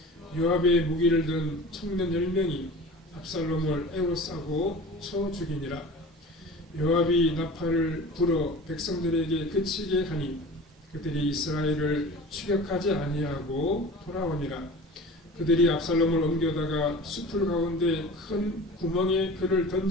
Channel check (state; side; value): normal; both; correlation 0.38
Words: 요압의 무기를 든 청년 10명이 압살롬을 에워싸고 쳐 죽이니라. 요압이 나팔을 불어 백성들에게 그치게 하니 그들이 이스라엘을 추격하지 아니하고 돌아오니라. 그들이 압살롬을 옮겨다가 수풀 가운데 큰 구멍에 그를